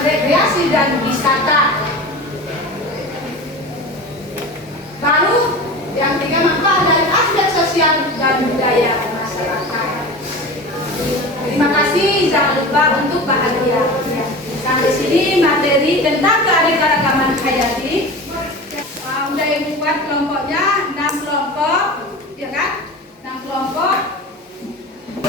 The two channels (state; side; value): normal; both; correlation 0.32